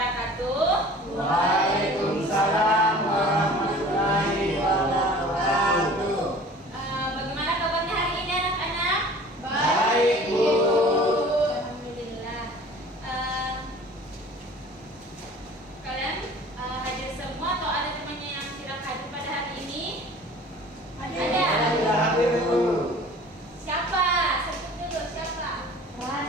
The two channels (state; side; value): normal; both; correlation 0.45